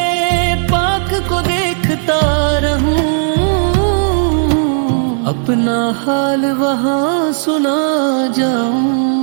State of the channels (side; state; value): left; silent; 69 dB below the other